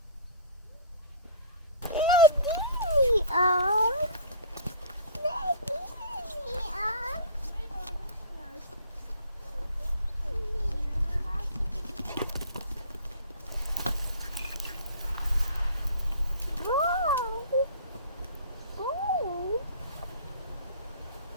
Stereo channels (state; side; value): inverted; both; correlation -0.43